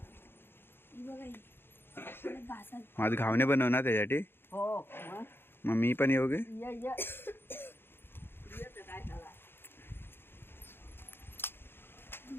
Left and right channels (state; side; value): late; right; 0.11 ms